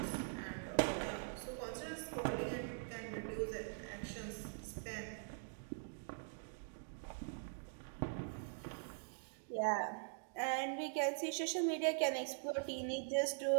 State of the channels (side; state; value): left; silent; digital silence